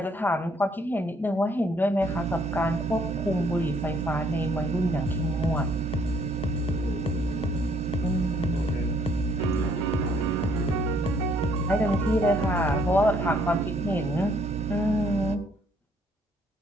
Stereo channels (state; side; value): normal; both; correlation 0.65